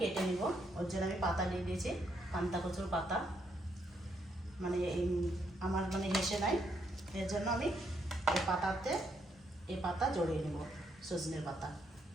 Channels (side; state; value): both; normal; correlation 0.75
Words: কেটে নিব, ওর জন্য আমি পাতা নিয়ে দিয়েছি, পান্তা কচুর পাতা। মানে আমার হেসে নাই, এর জন্য আমি এই পাতা জড়িয়ে নেব, সজনের পাতা,